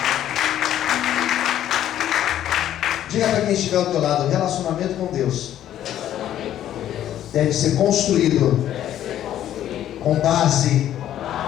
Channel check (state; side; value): quieter; right; 11.6 dB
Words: Diga para quem estiver ao teu lado: o relacionamento com Deus deve ser construído com base